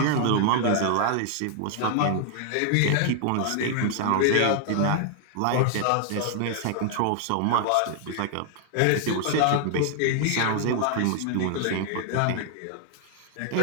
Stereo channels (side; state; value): both; different; correlation 0.00